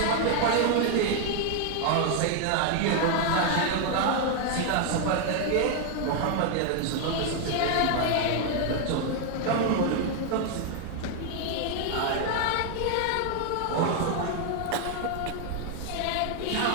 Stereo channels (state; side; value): different; both; correlation 0.00